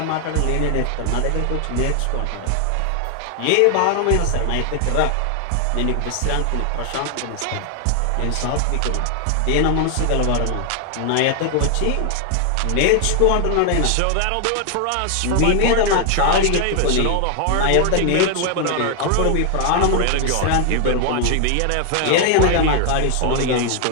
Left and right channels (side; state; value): both; different; correlation 0.00